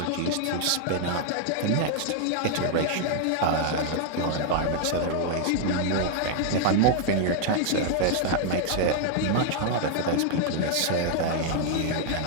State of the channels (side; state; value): both; different; correlation 0.00